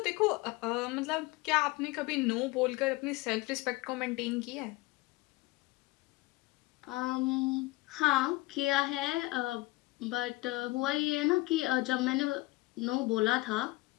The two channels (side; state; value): right; quieter; 20.9 dB